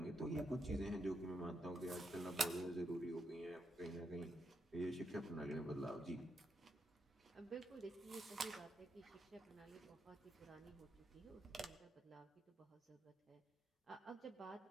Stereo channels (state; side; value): normal; both; correlation 0.82